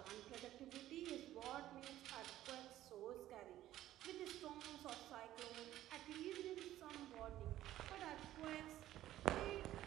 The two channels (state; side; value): quieter; left; 13.7 dB